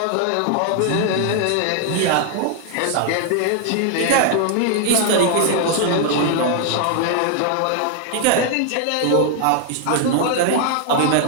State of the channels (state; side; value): different; both; correlation 0.00